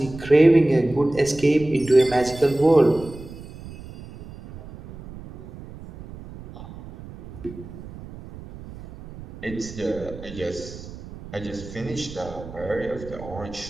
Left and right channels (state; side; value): noise; right; rumble, 15 dB below the sound